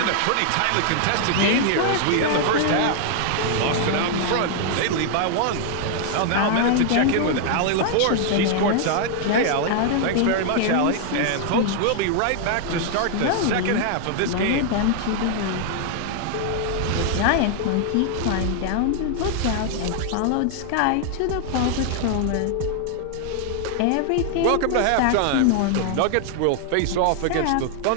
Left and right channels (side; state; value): both; different; correlation 0.00